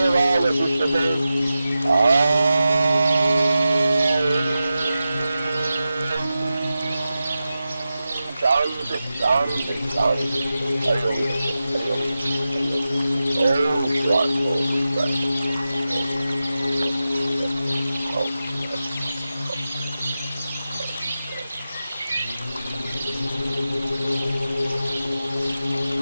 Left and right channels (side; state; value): both; inverted; correlation -0.92